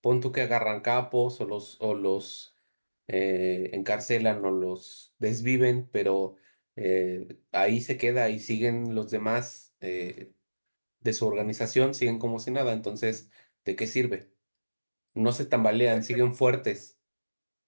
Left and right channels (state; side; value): inverted; both; correlation -1.00